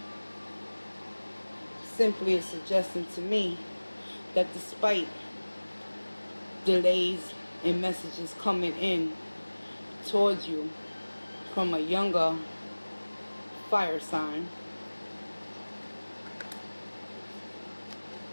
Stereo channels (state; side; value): inverted; both; correlation -1.00